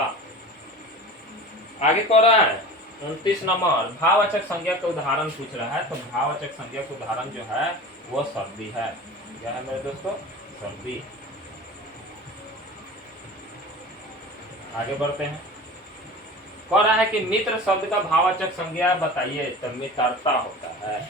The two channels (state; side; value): normal; both; correlation 0.36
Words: आगे कह रहा है 29 नंबर, भाववाचक संज्ञा का उदाहरण पूछ रहा है, तो भाववाचक संज्ञा का उदाहरण जो है वो सर्दी है। क्या है मेरे दोस्तों, सर्दी। आगे बढ़ते हैं। कह रहा है कि मित्र शब्द का भाववाचक संज्ञा बताइए, तो मित्रता होता है।